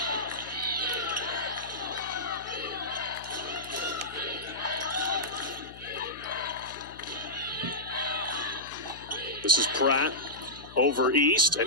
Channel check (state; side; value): noise; left; hum, 18 dB below the sound